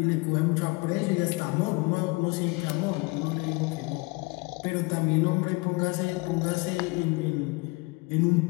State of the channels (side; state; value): right; quieter; 26.0 dB